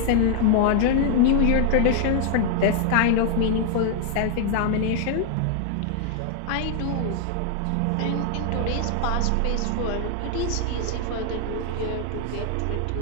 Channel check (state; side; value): different; both; correlation 0.00